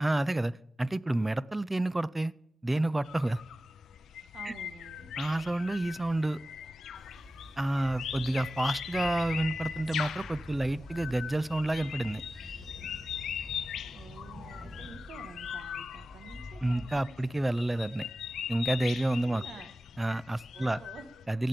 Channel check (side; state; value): both; normal; correlation 0.94